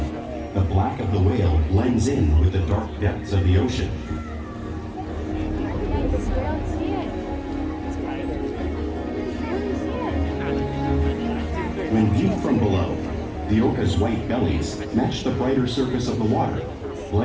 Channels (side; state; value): both; identical; correlation 1.00